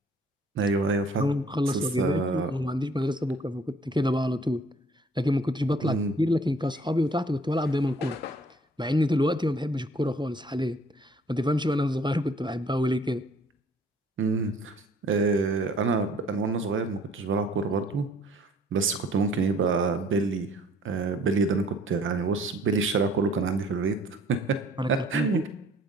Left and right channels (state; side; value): normal; both; correlation 0.57